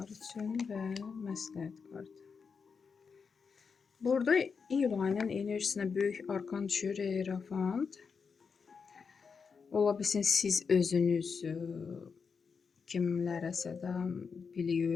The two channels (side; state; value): right; quieter; 5.6 dB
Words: üçün və məsləhət kartı. Burada iyul ayının enerjisinə böyük arkan düşür, Hierophant. Ola bilsin siz özünüz kimlərəsə də biliyi